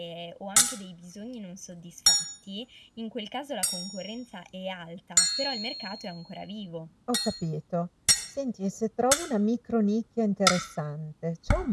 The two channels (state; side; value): identical; both; correlation 1.00